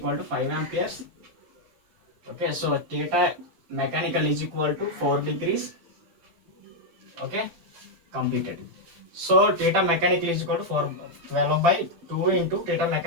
to 5 amperes. Okay, so theta mechanical is equal to 4 degrees. Okay, completed. So theta mechanical is equal to 12/2 into theta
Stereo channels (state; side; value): late; left; 12 ms